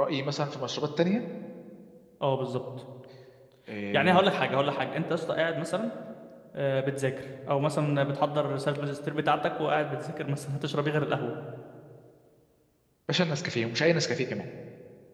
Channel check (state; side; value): identical; both; correlation 1.00